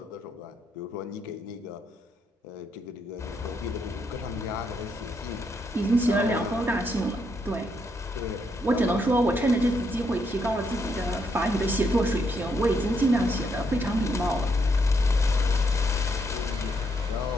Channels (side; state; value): both; normal; correlation 0.77